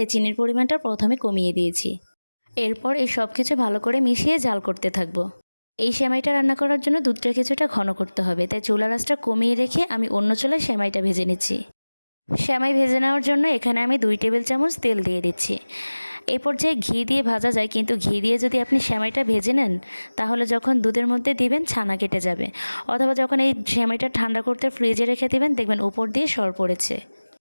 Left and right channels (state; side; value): inverted; both; correlation -1.00